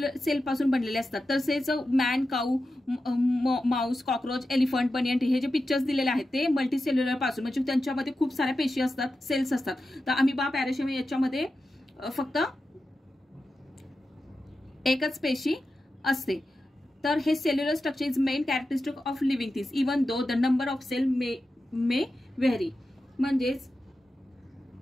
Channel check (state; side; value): normal; both; correlation 0.91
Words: पासून बनलेले असतात. तसेच man, cow, mouse, cockroach, elephant, banyan tree हे जे पिक्चर्स दिलेले आहेत ते मल्टीसेल्युलर पासून म्हणजे त्यांच्यामध्ये खूप साऱ्या पेशी असतात, सेल्स असतात. तर अमिबा, पॅराशियम याच्यामध्ये फक्त एकच पेशी असते. तर हे cellular structure is main characteristic of living things even though the number of cell may vary. म्हणजेच